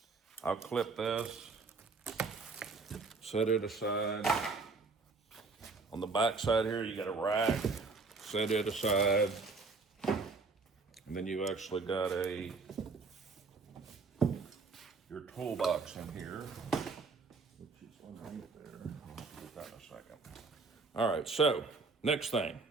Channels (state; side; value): quieter; left; 4.1 dB